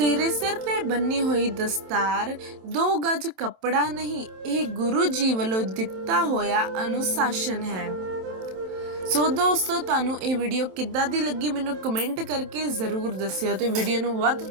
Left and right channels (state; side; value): late; left; 27 ms